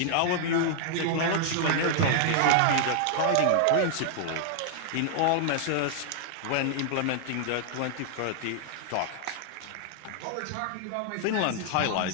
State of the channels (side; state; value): both; different; correlation -0.01